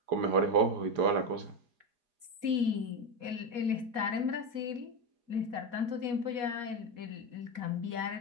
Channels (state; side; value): late; left; 4.2 ms